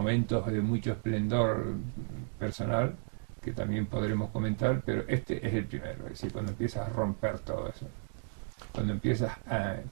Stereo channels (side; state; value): left; silent; digital silence